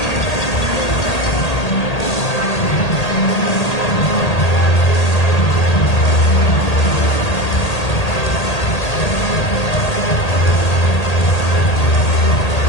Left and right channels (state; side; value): late; right; 1.8 ms